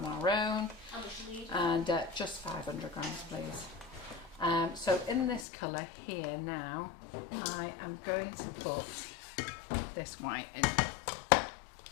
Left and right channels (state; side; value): drops out; right; at 5.5 s